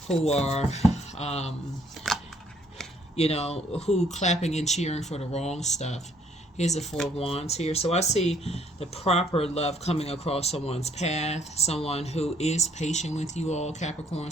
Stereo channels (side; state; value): both; normal; correlation 0.64